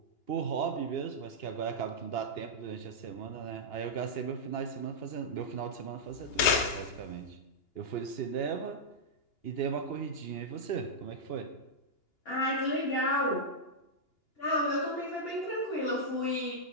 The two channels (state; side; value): late; right; 2.9 ms